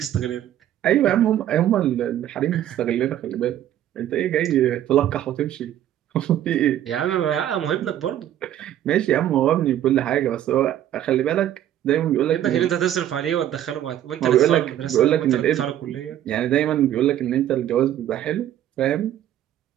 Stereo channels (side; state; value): left; quieter; 11.7 dB